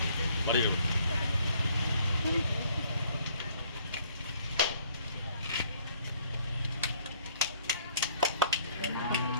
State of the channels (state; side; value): inverted; both; correlation -0.62